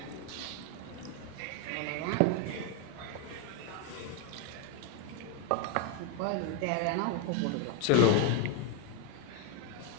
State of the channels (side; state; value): both; different; correlation 0.01